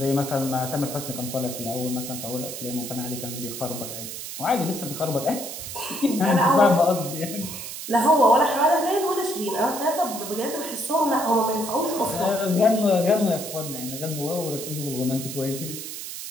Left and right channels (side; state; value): right; noise; hiss, 8 dB below the sound